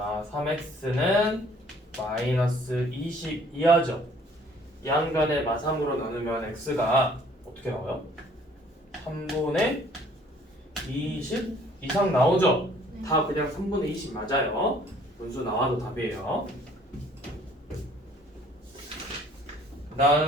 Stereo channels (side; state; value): both; normal; correlation 0.57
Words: 3x는 마이너스 20 이하죠. 양간의 마 3으로 나누면 x가 어떻게 나와요? 3분의 20 이상 나오죠? 다 그냥 3분의 20 맞아요. 분수 나와도 답이에요.